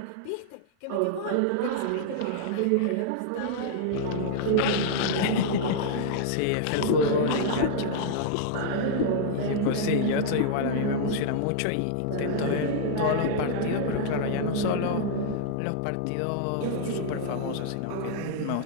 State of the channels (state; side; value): different; both; correlation -0.01